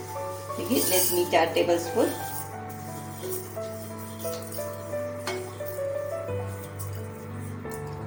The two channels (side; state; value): both; identical; correlation 1.00